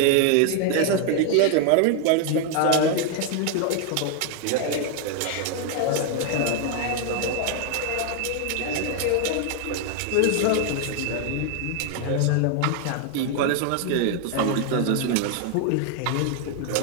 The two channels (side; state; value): both; different; correlation 0.00